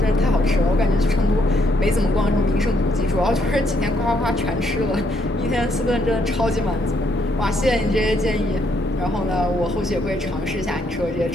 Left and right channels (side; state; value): both; normal; correlation 0.73